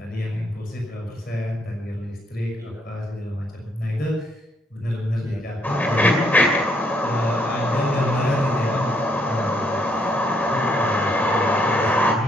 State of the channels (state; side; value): normal; both; correlation 0.72